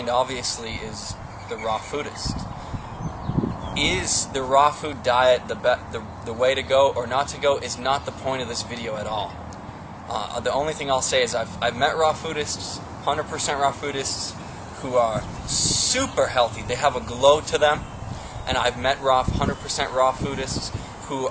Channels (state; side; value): identical; both; correlation 1.00